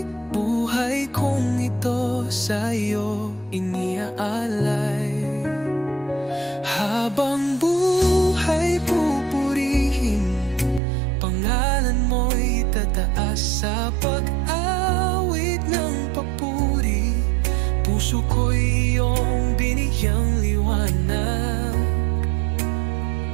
Buhay kong ito sa iyo iniaalay. Habang buhay pupurihin, pangalan mo'y tataas sa pag-awit ng papuri. Puso ko'y iyong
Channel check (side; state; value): left; drops out; at 10.8 s